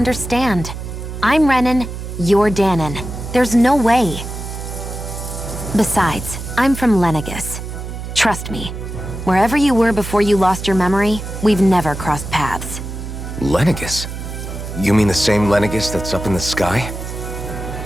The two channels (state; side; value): noise; right; hum, 8 dB below the sound